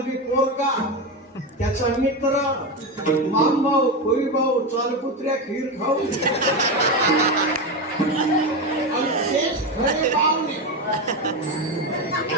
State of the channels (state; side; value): normal; both; correlation 0.15